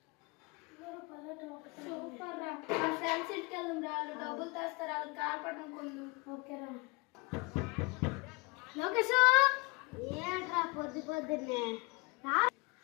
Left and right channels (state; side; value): quieter; right; 27.1 dB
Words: సూపర్ రా. మన ఫ్రెండ్స్ ఇంటికి వెళ్దాం రా. వాళ్ళు డబ్బులు తెస్తారు, వాళ్ళకి గాలిపటం కొందాం. ఓకేరా. లోకేష్ ఏంట్రా పొద్దు పొద్దున్నే